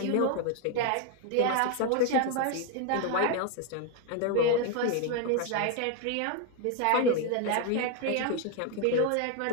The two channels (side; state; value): both; different; correlation 0.01